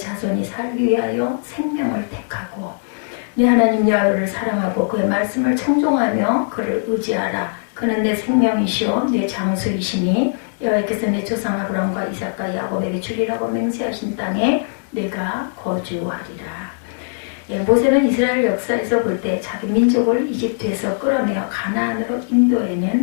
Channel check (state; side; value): silent; right; digital silence